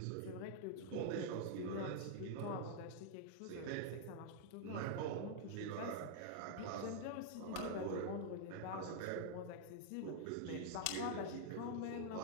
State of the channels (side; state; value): both; different; correlation -0.01